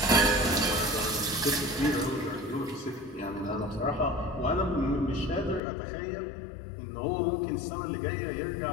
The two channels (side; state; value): right; drops out; at 5.6 s